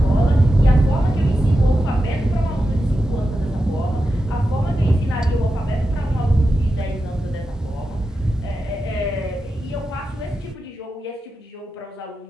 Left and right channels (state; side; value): normal; both; correlation 0.90